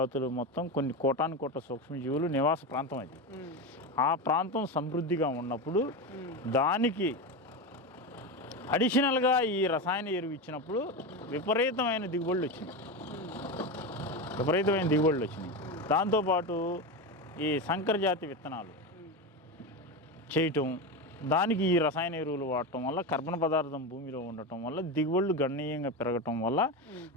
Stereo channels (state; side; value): normal; both; correlation 0.18